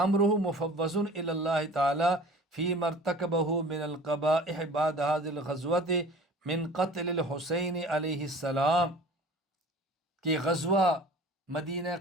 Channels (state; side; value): normal; both; correlation 0.43